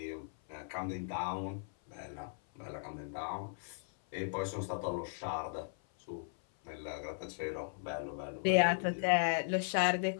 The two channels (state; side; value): silent; right; 53 dB below the other